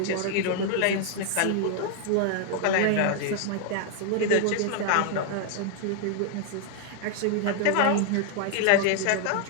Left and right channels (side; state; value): both; different; correlation 0.00